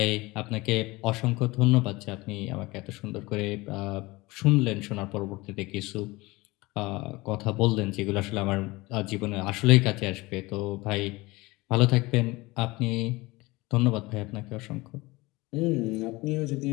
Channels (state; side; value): quieter; right; 21.9 dB